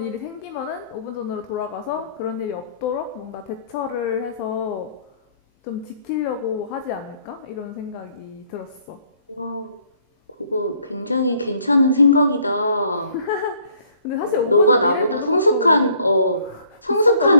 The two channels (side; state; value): both; inverted; correlation -0.61